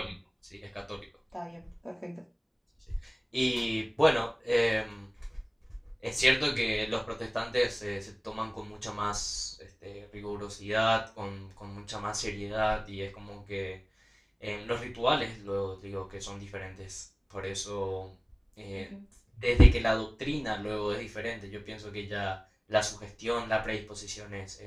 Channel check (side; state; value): both; identical; correlation 1.00